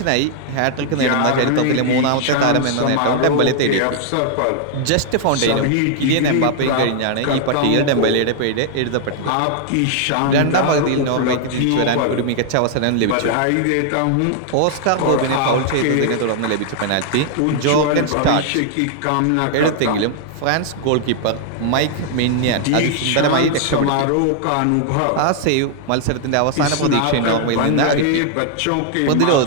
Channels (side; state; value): both; different; correlation 0.00